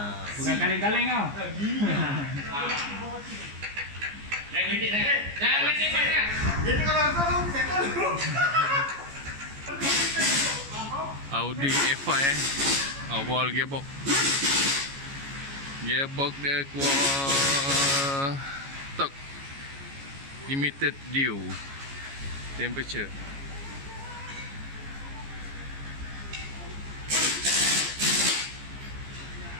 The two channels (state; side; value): late; left; 14 ms